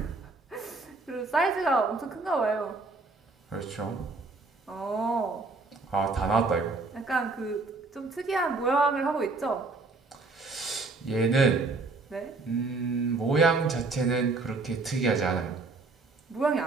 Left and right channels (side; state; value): left; quieter; 3.7 dB